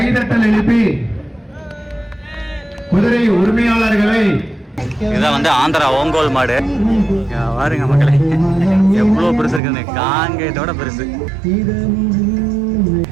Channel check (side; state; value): left; drops out; at 9.6 s